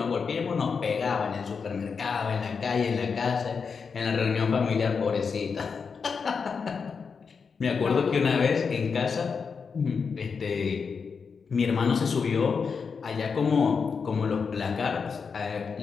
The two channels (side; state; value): right; quieter; 5.6 dB